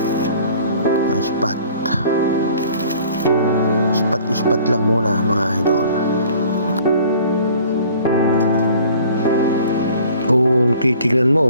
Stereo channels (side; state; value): both; inverted; correlation -0.51